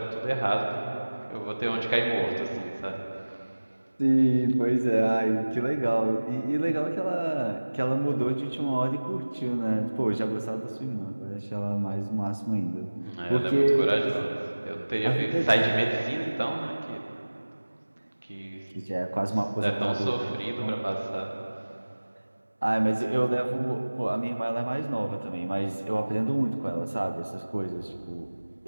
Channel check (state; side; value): inverted; both; correlation -1.00